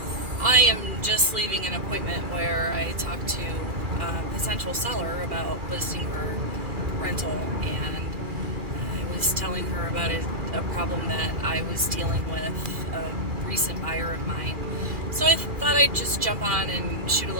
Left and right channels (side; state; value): left; late; 2.4 ms